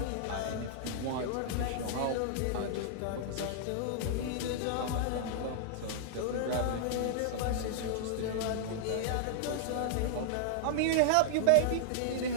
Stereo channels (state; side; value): different; both; correlation -0.01